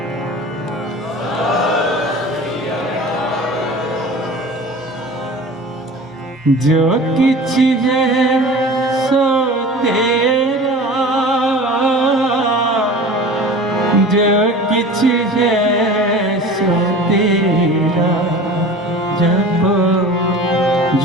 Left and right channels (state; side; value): normal; both; correlation 0.38